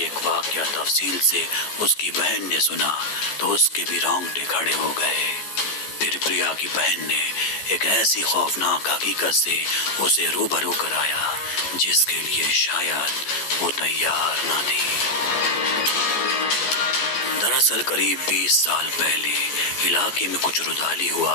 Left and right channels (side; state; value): right; late; 14 ms